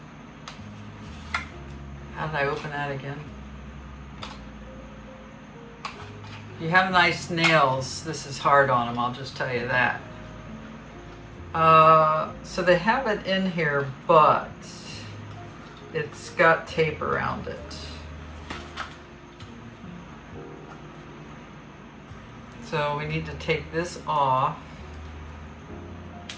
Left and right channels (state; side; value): identical; both; correlation 1.00